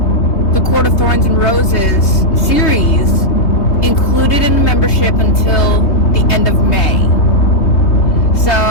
the Court of Thorns and Roses series included in the membership until the end of May. So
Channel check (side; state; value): right; late; 3.2 ms